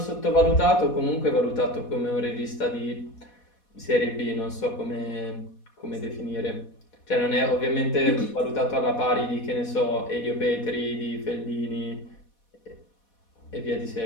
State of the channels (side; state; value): right; late; 4.1 ms